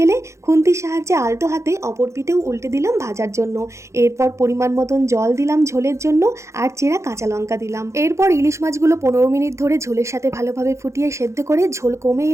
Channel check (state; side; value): late; left; 0.14 ms